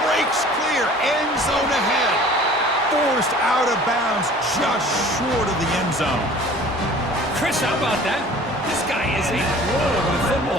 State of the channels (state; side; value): normal; both; correlation 0.47